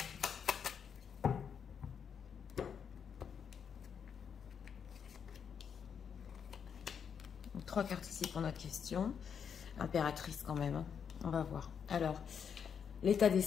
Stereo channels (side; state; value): right; quieter; 7.2 dB